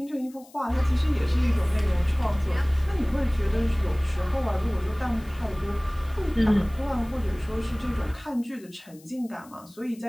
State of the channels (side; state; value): left; noise; hiss, 25 dB below the sound